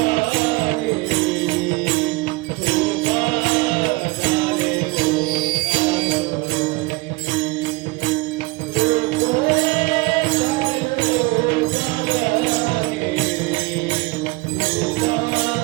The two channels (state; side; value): quieter; left; 23.4 dB